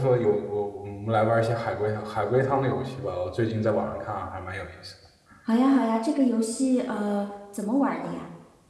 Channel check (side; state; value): both; identical; correlation 1.00